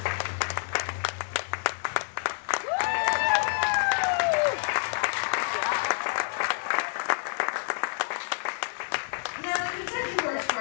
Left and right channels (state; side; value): silent; right; digital silence